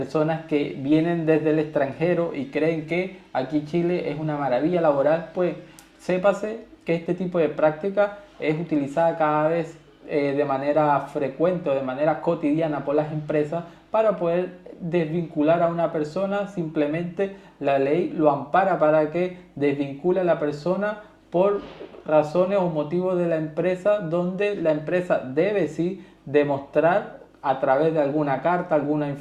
que vienen desde el extranjero y creen que aquí Chile es una maravilla laboral, pues sépase que este tipo de práctica es utilizada cada vez de manera frecuente o de manera cotidiana por las empresas para poder desvincular a una persona. Simplemente la ley lo ampara para que desvincule a la persona por razones o motivos de la empresa, donde la empresa debe sí demostrar a través de alguna carta, alguna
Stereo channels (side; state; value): both; identical; correlation 1.00